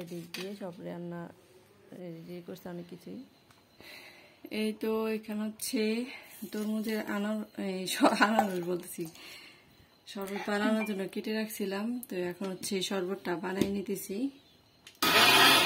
দিক দিয়ে সব রান্না রেডি করছে অনেক কিছুই। এই তো এখানে হচ্ছে তরমুজের আনারস বলতেছি, শরবত বানানোর জন্য কেটে রাখছিলাম। তো এখন হচ্ছে শরবতটা বানিয়ে নিতেছি।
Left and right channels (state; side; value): identical; both; correlation 1.00